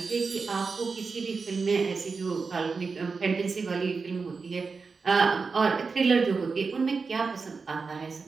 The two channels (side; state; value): left; quieter; 4.7 dB